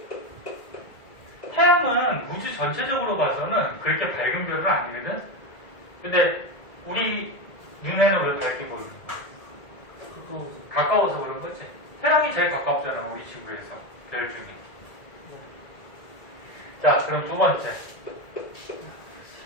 태양은 우주 전체적으로 봐서는 그렇게 밝은 별은 아니거든? 근데 우리 눈에는 왜 밝게 보이는 거야? 가까워서 그런 거지. 태양이 제일 가깝잖아, 우리 지구에서. 별 중에. 자, 그럼 두 번째.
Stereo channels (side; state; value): right; late; 2.0 ms